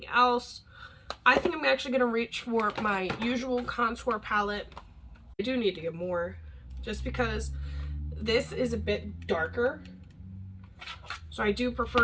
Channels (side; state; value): both; identical; correlation 1.00